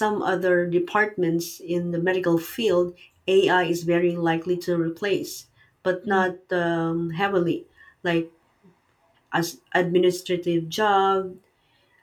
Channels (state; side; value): identical; both; correlation 1.00